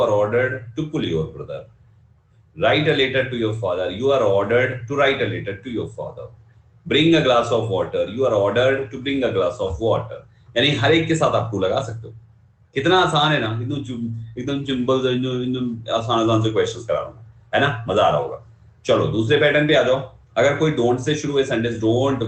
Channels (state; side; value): identical; both; correlation 1.00